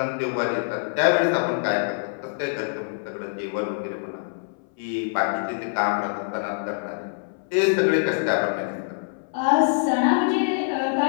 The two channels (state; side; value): silent; right; 61 dB below the other